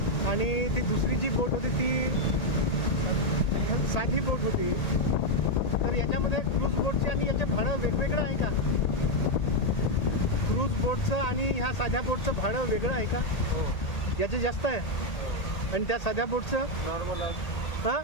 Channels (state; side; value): late; right; 1.8 ms